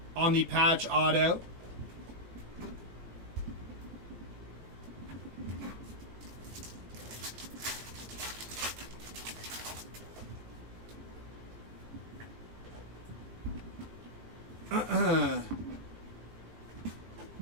on the patch auto.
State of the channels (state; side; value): late; left; 18 ms